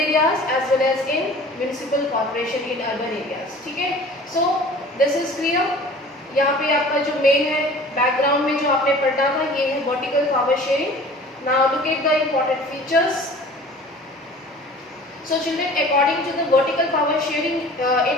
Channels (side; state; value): both; normal; correlation 0.45